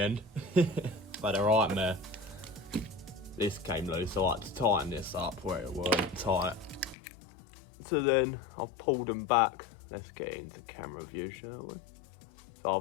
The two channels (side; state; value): right; drops out; at 7.0 s